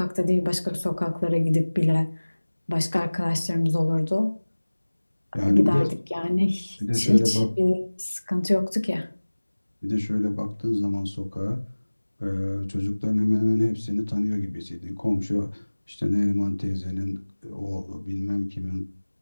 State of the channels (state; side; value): inverted; both; correlation -1.00